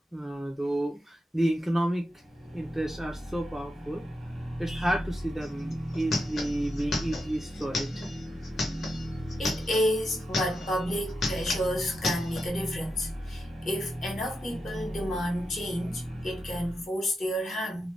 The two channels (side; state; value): both; normal; correlation 0.87